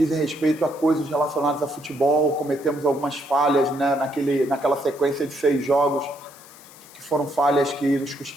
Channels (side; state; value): left; noise; hiss, 22 dB below the sound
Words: respeito a coisas relacionadas a futebol. Cometemos algumas falhas, né, naquela sequência de 6 jogos, que foram falhas que nos